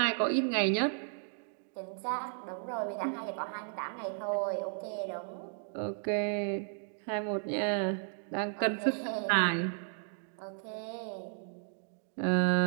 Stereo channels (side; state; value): left; silent; digital silence